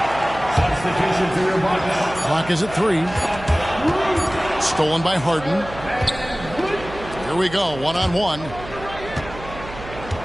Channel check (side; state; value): right; noise; hum, 14 dB below the sound